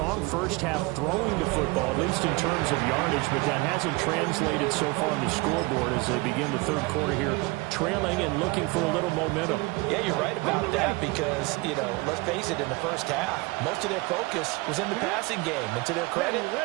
first half throwing the football, at least in terms of yardage, but that hasn't translated so far on the scoreboard as they begin the third quarter here, trailing and looking for a little momentum. Yeah, you're right about that because, let's face it, in the first half, most of their focus was in the passing game. And to their credit,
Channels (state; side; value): quieter; left; 24.5 dB